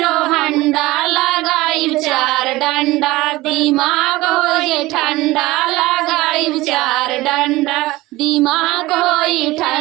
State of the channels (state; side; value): quieter; left; 19.3 dB